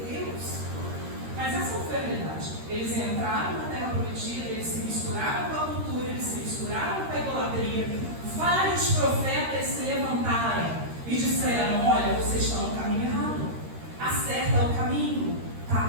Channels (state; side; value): late; left; 13 ms